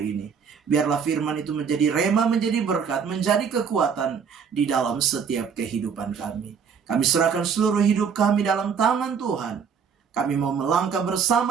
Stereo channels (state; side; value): quieter; left; 6.6 dB